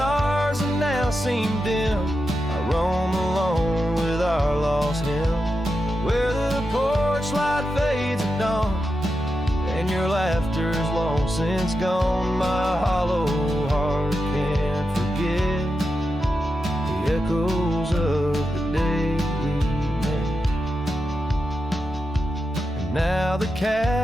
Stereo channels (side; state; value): both; normal; correlation 0.88